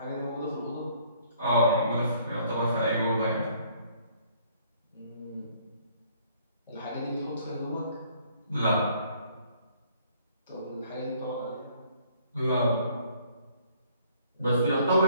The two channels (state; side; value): inverted; both; correlation -0.61